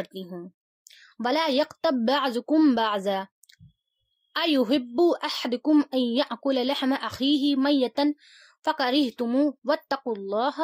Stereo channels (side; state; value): both; identical; correlation 1.00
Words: हूँ, वला यक़्तब बअज़ुकुम बअज़ा अयुहिब्बु अहदुकुम अन यअकुल लहम अखीही मय्यतन फ़करिहतुमू